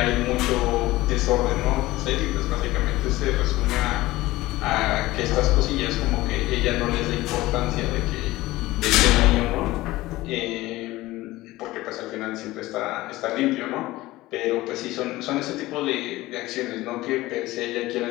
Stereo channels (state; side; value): quieter; right; 18.2 dB